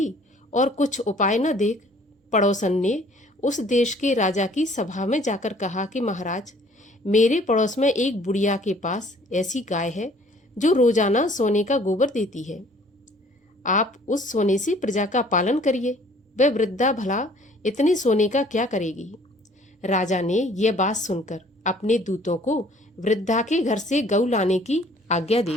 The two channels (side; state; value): both; normal; correlation 0.56